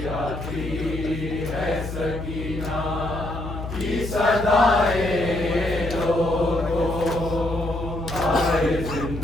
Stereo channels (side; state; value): left; noise; hum, 7 dB below the sound